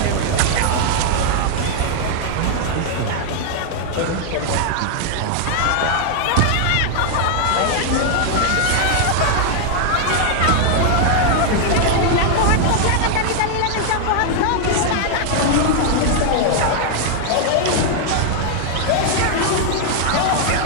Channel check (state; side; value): different; both; correlation 0.00